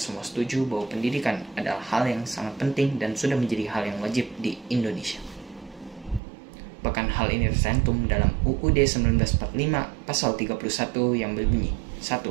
semua setuju bahwa pendidikan adalah hal yang sangat penting dan sudah menjadi hal yang wajib di Indonesia. Bahkan hal ini tercantum dalam UUD 1945 pasal 31 yang berbunyi 1.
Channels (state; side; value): drops out; left; at 6.2 s